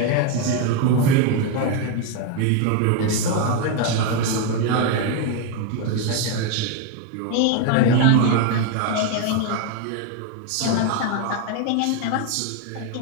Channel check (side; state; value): both; different; correlation 0.02